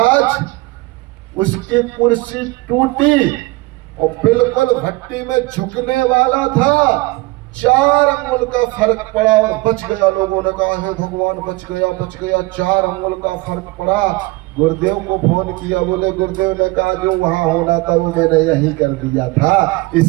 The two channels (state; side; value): quieter; left; 22.2 dB